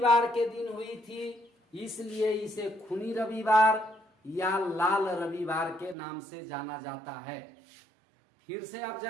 के दिन हुई थी, इसलिए इसे खूनी रविवार या लाल रविवार के नाम से जाना जाता है। फिर से आप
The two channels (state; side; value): drops out; left; at 6.0 s